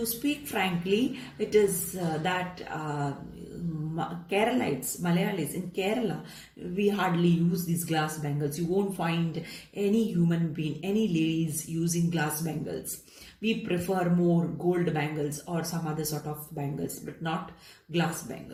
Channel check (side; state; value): both; identical; correlation 1.00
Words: frankly, it is that Keralites, Malayalis in Kerala, we hardly use these glass bangles. You won't find any human being, any ladies using glass bangles. We prefer more gold bangles or some other sort of bangles, but not glass